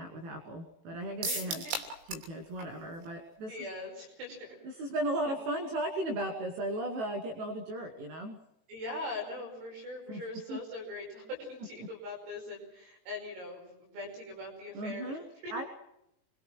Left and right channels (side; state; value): left; late; 18 ms